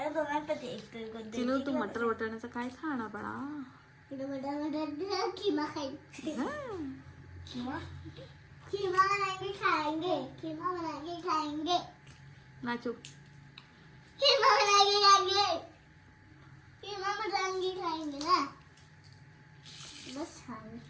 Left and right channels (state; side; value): identical; both; correlation 1.00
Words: दोघांपैकी एक तर कोणतं चिनू तू मटर वाटाण्याचं काय खाणार बाळा? खिमा खाएंगे. हा. खिमा बनाएंगे खाएंगे. खिमा बनाएंगे खाएंगे. नाचू. खिमा बनाएंगे खाएंगे. खिमा बनाएंगे खाएंगे ना. बस छान.